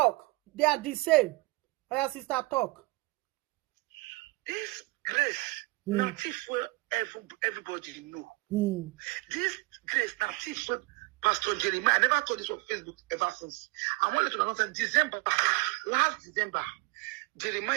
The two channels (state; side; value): quieter; left; 23.8 dB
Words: They are the same. Our sister talk. This Grace, not if everybody know. This Grace, not if Pastor Jeremiah. I never told this on Facebook ever since. I wanted to announce in December, last December,